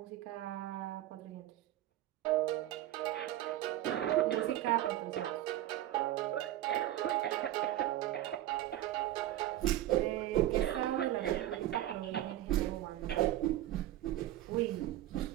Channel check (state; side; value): quieter; left; 13.9 dB